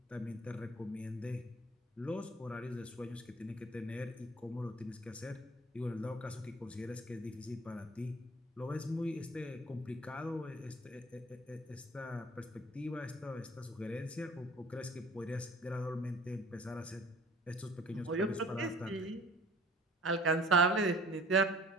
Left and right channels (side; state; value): both; normal; correlation 0.50